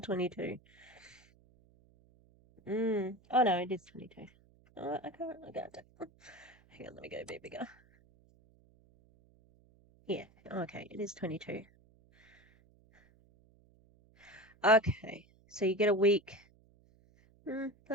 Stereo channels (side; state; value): right; noise; hum, 30 dB below the sound